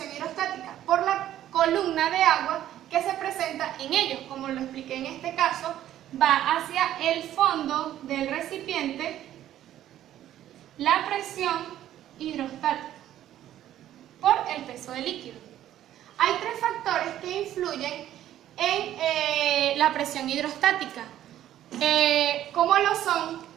hidrostática por la columna de agua que se presenta en ellos. Como lo expliqué en este caso, va hacia el fondo del recipiente la presión hidrostática por el peso del líquido. Hay tres factores que influyen en la presión hidrostática, como lo son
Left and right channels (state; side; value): quieter; left; 12.2 dB